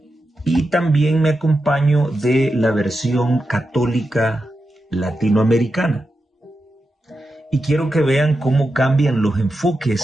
y también me acompaño de la versión católica latinoamericana. Y quiero que vean cómo cambian los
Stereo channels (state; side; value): normal; both; correlation 0.89